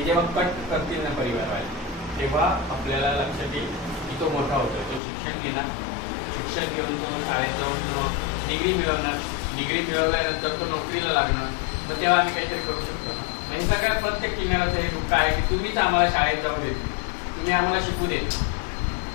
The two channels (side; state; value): right; drops out; at 5.0 s